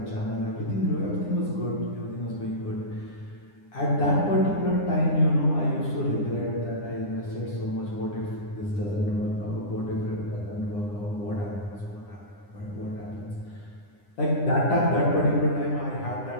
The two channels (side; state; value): right; late; 9.9 ms